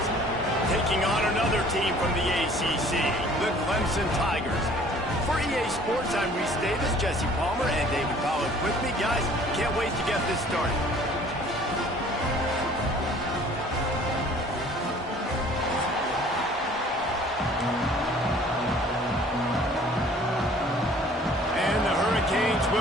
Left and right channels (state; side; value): normal; both; correlation 0.53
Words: taking on another team from the ACC, the Clemson Tigers. For EA Sports, I'm Reese Davis, Jesse Palmer, and David Pollack with me. Guys, can't wait to get this started. And the Hurricanes